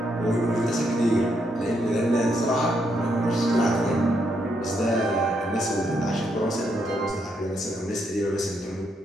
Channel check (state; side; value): normal; both; correlation 0.77